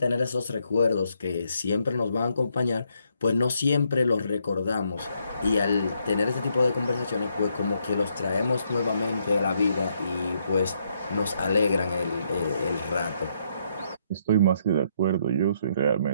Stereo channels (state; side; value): inverted; both; correlation -0.74